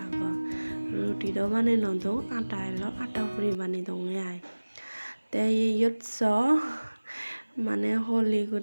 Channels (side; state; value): both; inverted; correlation -1.00